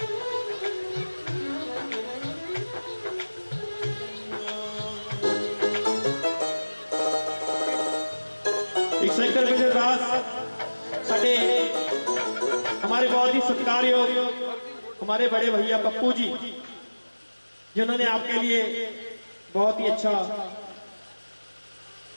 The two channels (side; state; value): both; inverted; correlation -1.00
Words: हमारे बहुत ही सत्कारयोग हमारे बड़े भैया पप्पू जी जिन्होंने आपके लिए बहुत ही अच्छा